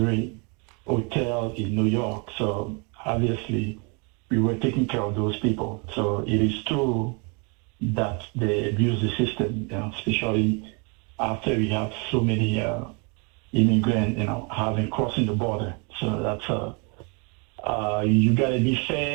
hotels in New York. So obviously, we were taking care of those people. So it is true that they abuse the system, especially after we have so many immigrant, having crossing the border. So that's you got to be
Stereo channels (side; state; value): left; quieter; 33.3 dB